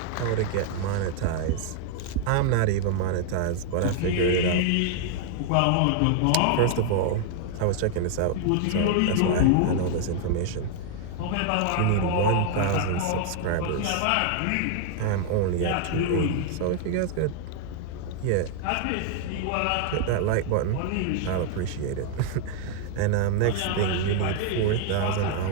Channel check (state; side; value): different; both; correlation 0.00